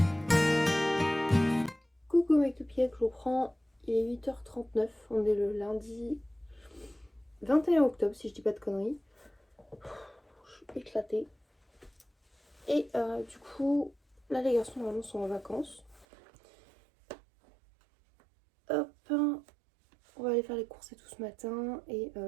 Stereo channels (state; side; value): drops out; left; at 16.1 s